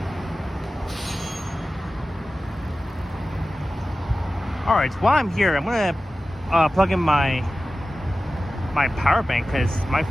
All right. While I'm here, I'm gonna plug in my power bank because my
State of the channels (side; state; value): both; normal; correlation 0.95